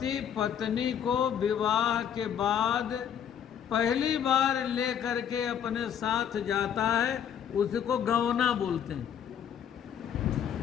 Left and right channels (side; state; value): right; quieter; 8.8 dB